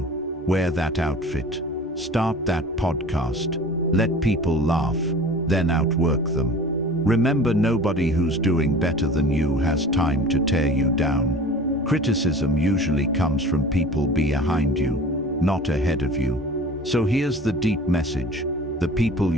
Wear that outfit. Start that podcast. Let people laugh, then outwork them. Remember, nobody who's doing better than you has time to tear you down. Criticism usually comes from people behind you, not ahead of you. So here's the deep message. The people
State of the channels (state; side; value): normal; both; correlation 0.41